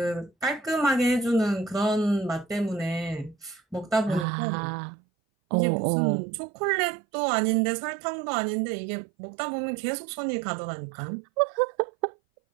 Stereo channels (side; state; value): left; drops out; at 4.2 s